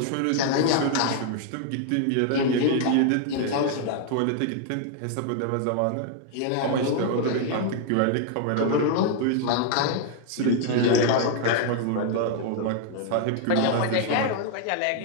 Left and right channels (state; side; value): different; both; correlation 0.00